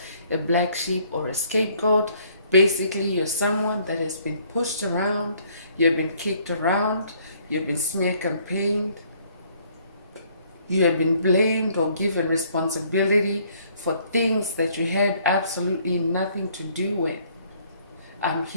a black sheep, or a scapegoat. Basically, you're someone that has been pushed around, you've been kicked around, you've been smear campaigned, you have been blamed or given responsibility for things that you had absolutely nothing to do with. I'm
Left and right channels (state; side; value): inverted; both; correlation -0.63